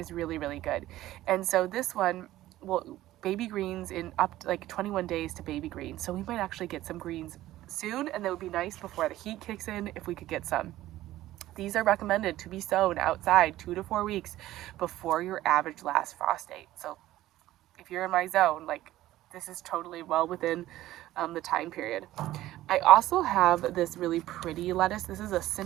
really good. And so this one will baby greens in up to like 21 days to baby greens, so we might actually get some greens soon, and that would be nice before the heat kicks in if we could get some. These are recommended to be sown outside 2 to 4 weeks before your average last frost date. So if you're in my zone, like this is totally well within the time period. I also have this really pretty lettuce. This is a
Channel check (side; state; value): left; quieter; 15.1 dB